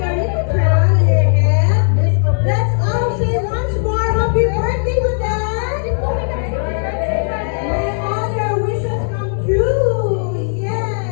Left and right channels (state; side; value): silent; right; digital silence